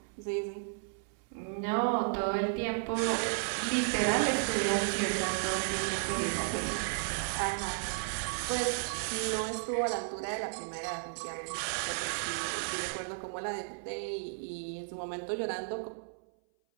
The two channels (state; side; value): silent; left; 55 dB below the other